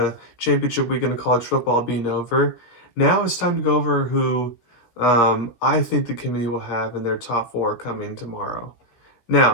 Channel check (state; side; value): late; right; 16 ms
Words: championship weekend of college football being over, now it's time to go over who I think the committee will have in their top four coming tomorrow.